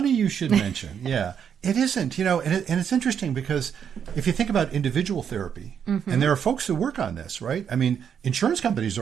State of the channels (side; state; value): left; quieter; 7.9 dB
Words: you should mention. Yeah, it isn't, and it's interesting because if you think about individual therapy, and there are folks who work on this, right? I mean, insurance companies